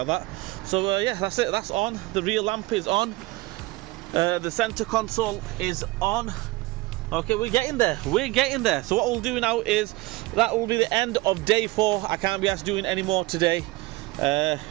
that. So yeah, that's it. That's on. The rear lamp is on. The center console is on. Okay, we're getting there. We're getting there. So what we'll do now is that will be the end of day 4. I can't be asked doing any more today.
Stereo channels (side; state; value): left; quieter; 21.2 dB